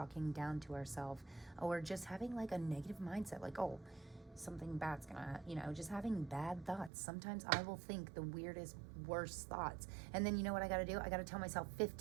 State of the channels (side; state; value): left; drops out; at 6.9 s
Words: down to ourselves, or just having like a negative mindset, like, oh, something bad's gonna, just having bad thoughts. Sometimes I will think the weirdest, worst thoughts, and then you know what I gotta do? I gotta tell myself